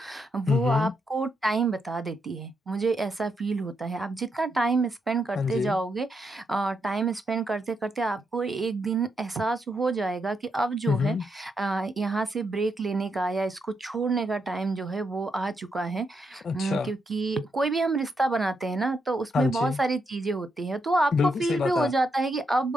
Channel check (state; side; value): normal; both; correlation 0.81